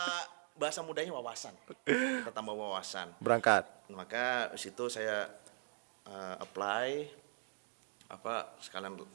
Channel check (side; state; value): left; silent; digital silence